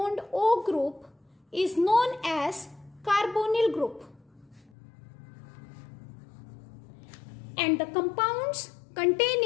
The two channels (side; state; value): right; drops out; at 4.7 s